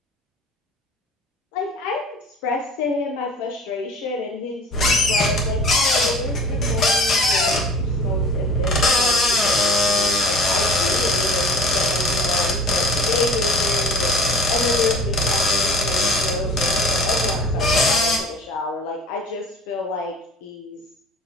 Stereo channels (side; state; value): both; normal; correlation 0.44